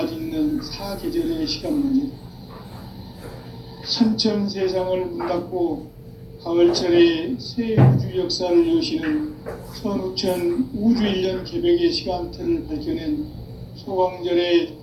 짓는 사계절의 시간문이다. 선천세상을 문 닫고 가을철에 새 우주 역사를 여시는 선우천 우주일년 개벽의 시간틀을 밝혀낸 소광절의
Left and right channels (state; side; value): identical; both; correlation 1.00